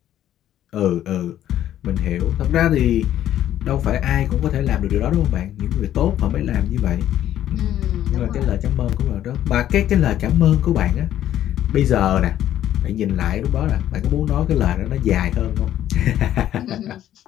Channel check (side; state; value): right; quieter; 11.8 dB